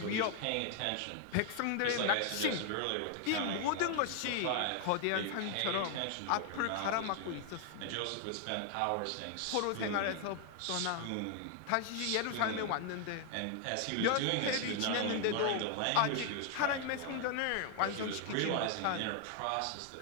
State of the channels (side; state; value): both; different; correlation 0.00